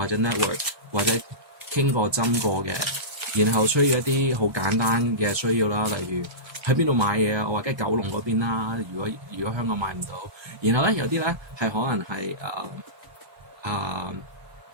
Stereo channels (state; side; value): late; left; 1.2 ms